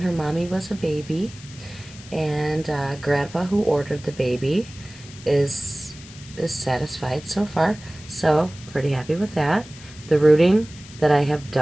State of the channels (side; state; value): left; noise; hiss, 19 dB below the sound